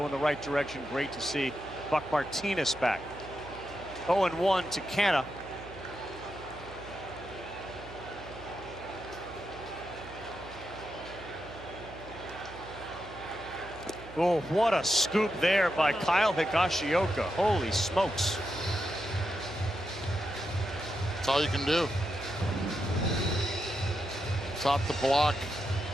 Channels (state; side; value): noise; right; hum, 16 dB below the sound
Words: in the right direction. Great to see Buck Martinez back. 0-1 to Canada. Oh, what a scoop there by Kyle Higashioka. Holy smokes. That's all you can do. Top the block.